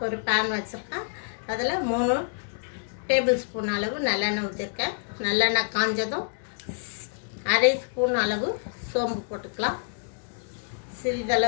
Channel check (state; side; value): silent; right; digital silence